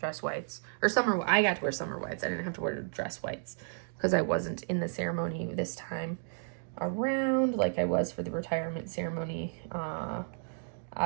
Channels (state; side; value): silent; left; digital silence